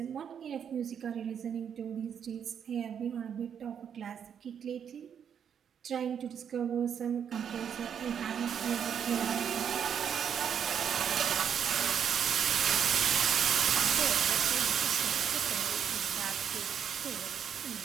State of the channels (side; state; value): left; quieter; 8.0 dB